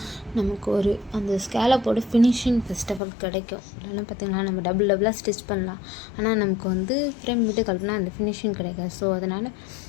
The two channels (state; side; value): drops out; right; at 3.0 s